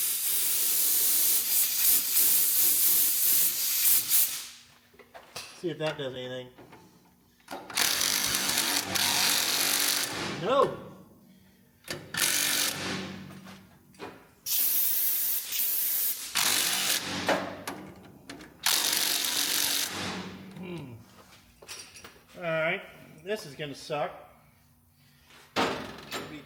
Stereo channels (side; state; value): both; identical; correlation 1.00